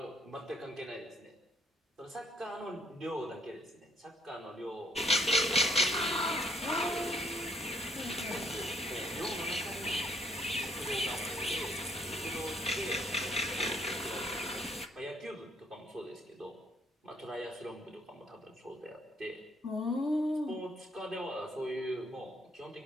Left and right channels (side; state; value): both; normal; correlation 0.67